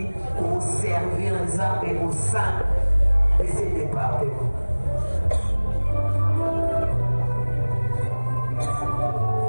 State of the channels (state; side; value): inverted; both; correlation -1.00